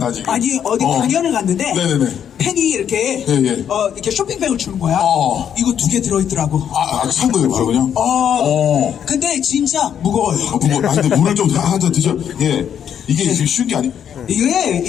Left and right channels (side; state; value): right; quieter; 8.8 dB